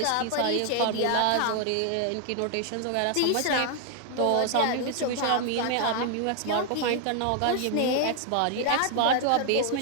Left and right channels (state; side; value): different; both; correlation 0.00